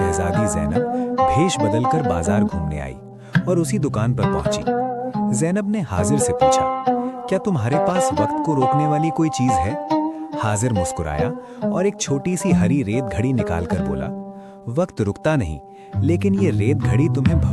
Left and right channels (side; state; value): both; identical; correlation 1.00